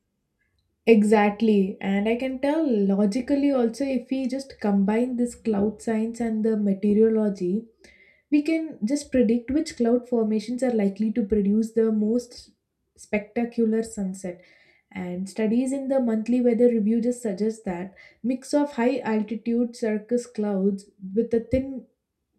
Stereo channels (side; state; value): both; identical; correlation 1.00